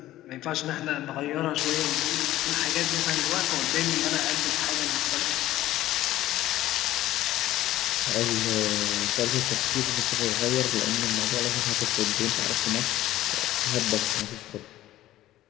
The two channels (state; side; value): quieter; right; 14.8 dB